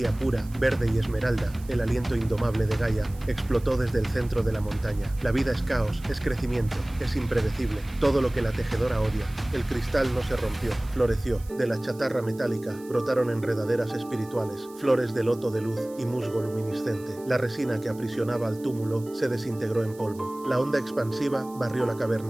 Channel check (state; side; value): noise; right; hiss, 23 dB below the sound